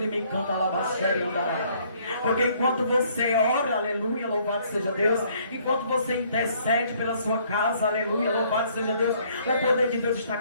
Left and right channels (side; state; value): both; inverted; correlation -0.63